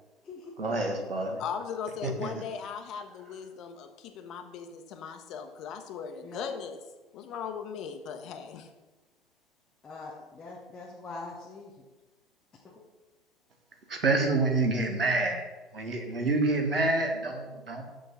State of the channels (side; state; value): both; normal; correlation 0.32